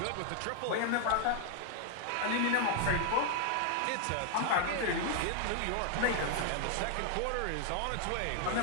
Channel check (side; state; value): both; different; correlation 0.00